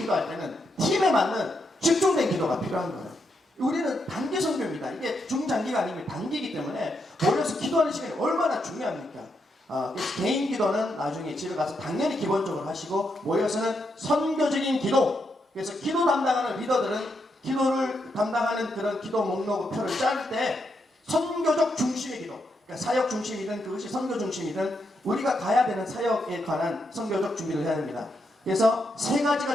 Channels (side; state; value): both; normal; correlation 0.81